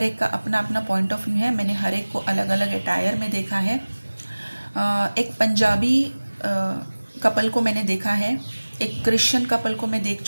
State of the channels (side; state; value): both; inverted; correlation -1.00